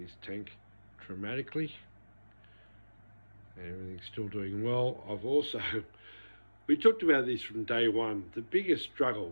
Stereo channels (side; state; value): both; inverted; correlation -1.00